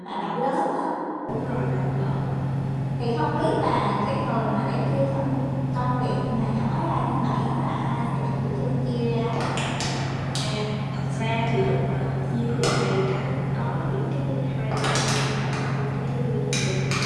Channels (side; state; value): both; identical; correlation 1.00